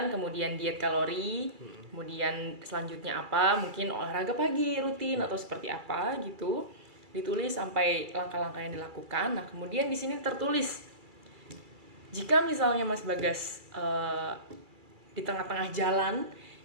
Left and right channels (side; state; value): left; late; 2.3 ms